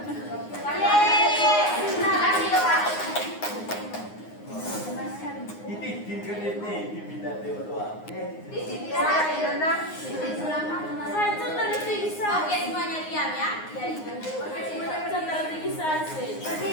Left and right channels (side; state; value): right; late; 9.6 ms